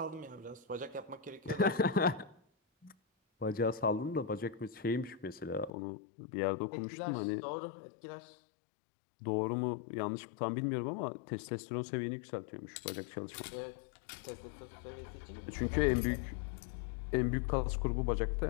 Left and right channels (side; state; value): right; drops out; at 5.7 s